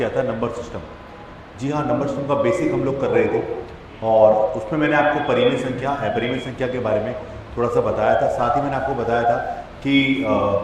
था नंबर सिस्टम। जी हाँ, नंबर सिस्टम का बेसिक हम लोग कर रहे थे और उसमें मैंने आपको परिमेय संख्या अपरिमेय संख्या के बारे में थोड़ा सा बताया था। साथ ही मैंने आपको बताया था कि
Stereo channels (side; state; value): both; identical; correlation 1.00